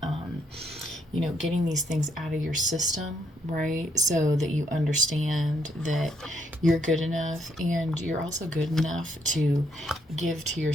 getting these things out of your system, right? So that you understand that you're good enough and you're also good enough to give to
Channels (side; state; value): both; normal; correlation 0.74